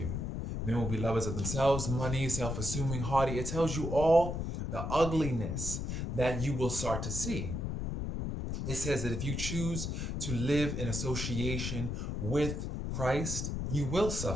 Men will be lovers of themselves, money, self-assuming, haughty. It tells you all the ugliness that you will start to see. It says that if you choose to live in association with Christ, you will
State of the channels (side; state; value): left; noise; rumble, 3 dB below the sound